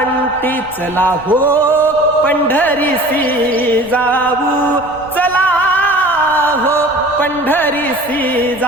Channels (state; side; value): noise; right; rumble, 23 dB below the sound